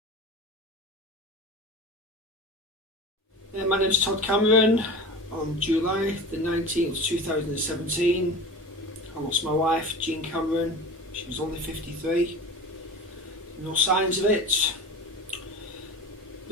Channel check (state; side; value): normal; both; correlation 0.33